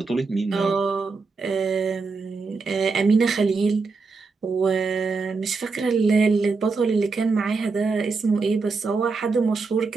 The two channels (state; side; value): quieter; left; 4.3 dB